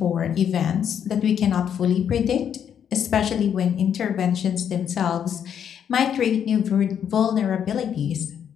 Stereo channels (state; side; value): quieter; right; 8.6 dB